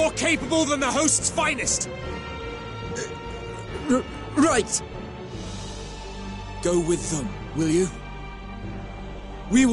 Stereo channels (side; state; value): both; identical; correlation 1.00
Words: capable than the host's finest! Right! Go with them, will you? We